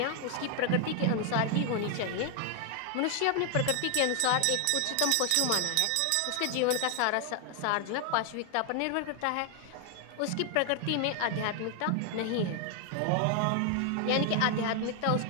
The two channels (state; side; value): different; both; correlation 0.00